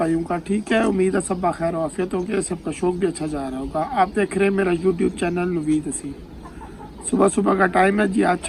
का? ठीक है, उम्मीद है सब खैर आफियत होगी, सबका शौक भी अच्छा जा रहा होगा। आप देख रहे हैं मेरा यूट्यूब चैनल नवीद हसीन। सुबह सुबह का टाइम है जी, आज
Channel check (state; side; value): identical; both; correlation 1.00